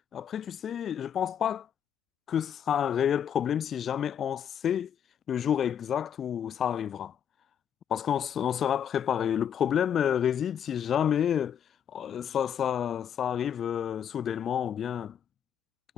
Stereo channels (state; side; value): quieter; right; 8.9 dB